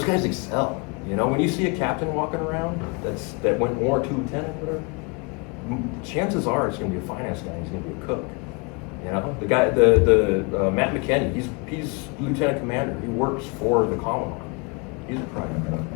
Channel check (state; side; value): quieter; right; 31.6 dB